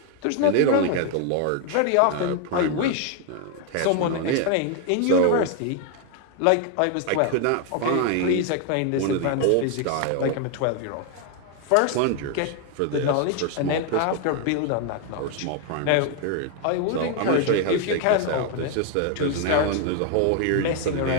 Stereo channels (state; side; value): different; both; correlation 0.01